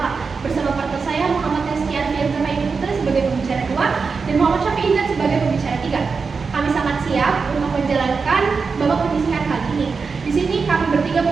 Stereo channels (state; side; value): quieter; left; 5.0 dB